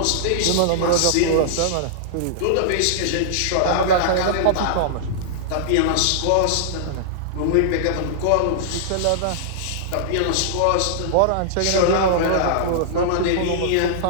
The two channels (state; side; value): different; both; correlation -0.02